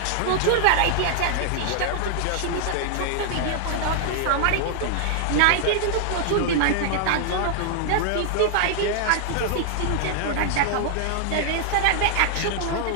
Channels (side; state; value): both; different; correlation -0.01